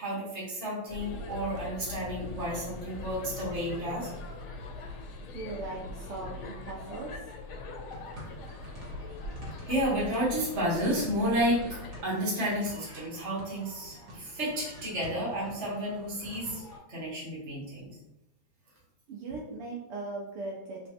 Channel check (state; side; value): late; left; 3.3 ms